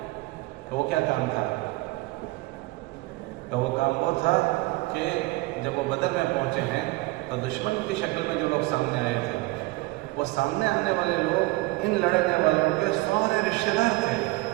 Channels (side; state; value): left; quieter; 21.6 dB